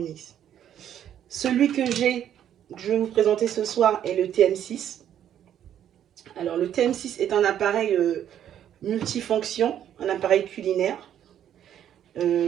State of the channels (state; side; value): quieter; left; 10.3 dB